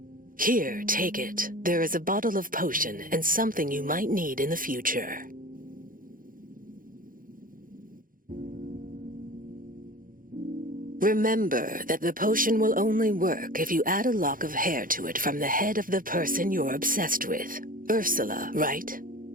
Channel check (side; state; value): left; late; 0.40 ms